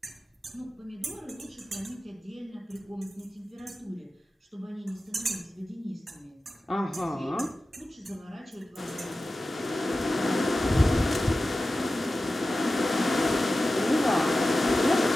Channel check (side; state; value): both; normal; correlation 0.94